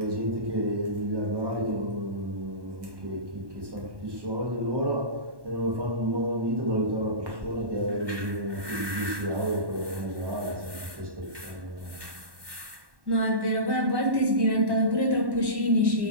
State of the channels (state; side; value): late; left; 1.1 ms